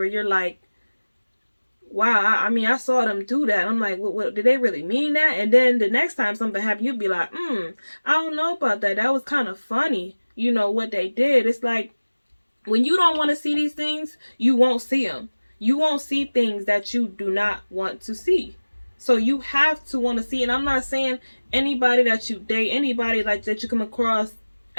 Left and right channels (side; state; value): both; inverted; correlation -1.00